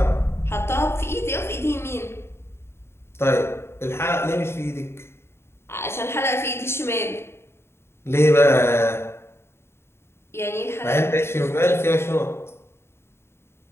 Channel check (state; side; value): late; right; 0.12 ms